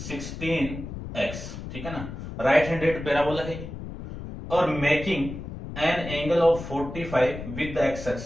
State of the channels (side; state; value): left; noise; rumble, 9 dB below the sound